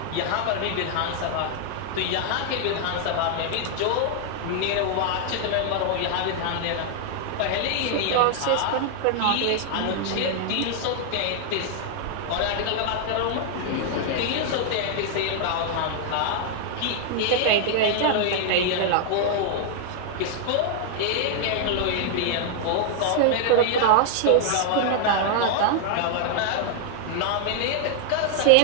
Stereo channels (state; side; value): different; both; correlation 0.00